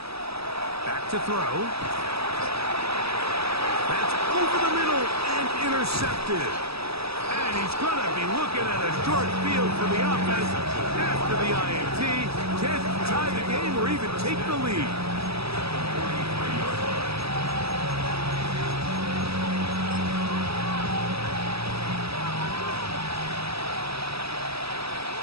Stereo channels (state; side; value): late; left; 0.78 ms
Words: Back to throw. That's over the middle and intercepted. And he's going to be looking at a short field for the offense after the INT. Can't tie the game or even take the lead.